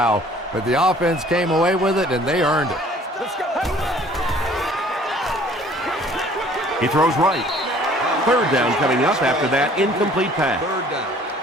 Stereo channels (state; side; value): normal; both; correlation 0.54